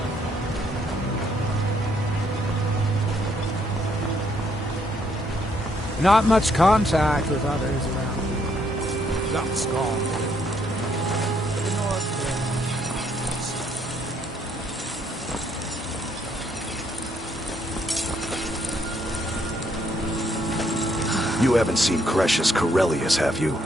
Not much contact with others around. That's gone. You haven't seen Cretius Corellius, have you?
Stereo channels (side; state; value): both; normal; correlation 0.71